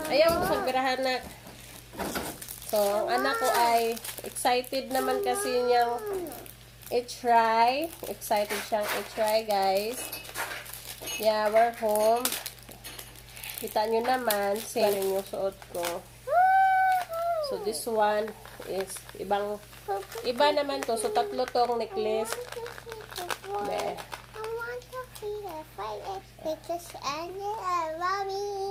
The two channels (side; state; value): both; identical; correlation 1.00